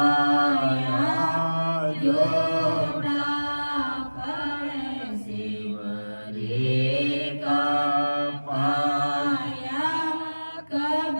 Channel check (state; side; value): inverted; both; correlation -1.00